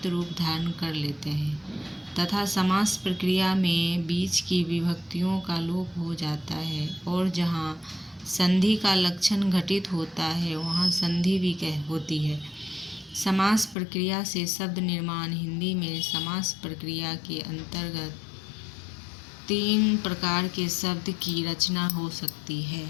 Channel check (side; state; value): right; drops out; at 13.8 s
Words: रूप धारण कर लेते हैं तथा समास प्रक्रिया में बीच की विभक्तियों का लोप हो जाता है, और जहाँ संधि का लक्षण घटित होता है वहाँ संधि भी होती है। समास प्रक्रिया से शब्द निर्माण। हिंदी में समास प्रक्रिया के अंतर्गत 3 प्रकार के शब्द की रचना हो सकती है।